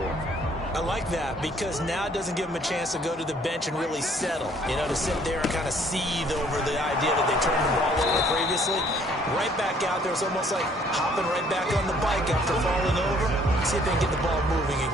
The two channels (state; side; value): normal; both; correlation 0.61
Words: it. I like that because now it doesn't give them a chance to go to the bench and really settle. You know, to sit there and kind of seethe over the idea that they turned the ball over previously. Right back out there, it's almost like hopping right back on the bike after falling over. See if they can get the ball moving